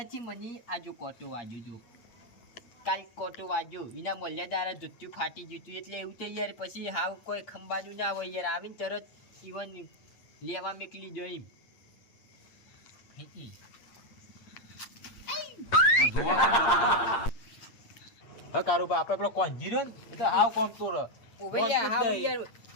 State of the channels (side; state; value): right; late; 8.7 ms